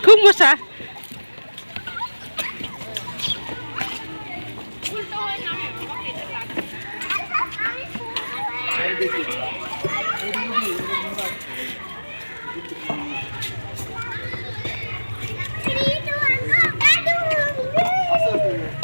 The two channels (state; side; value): inverted; both; correlation -1.00